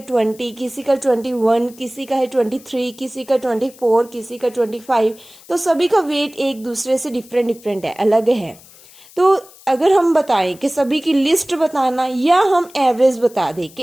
20, किसी का 21, किसी का है 23, किसी का 24, किसी का 25. तो सभी का वेट एक दूसरे से डिफरेंट है, अलग है. तो अगर हम बताएं कि सभी की लिस्ट बताना या हम एवरेज बता दें कि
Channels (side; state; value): left; noise; hiss, 23 dB below the sound